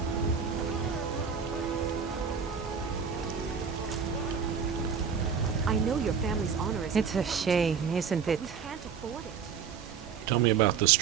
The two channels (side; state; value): left; quieter; 6.6 dB